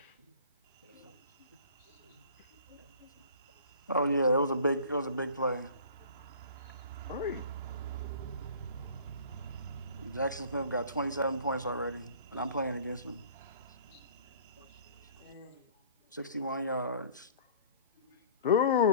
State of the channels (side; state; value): both; inverted; correlation -0.45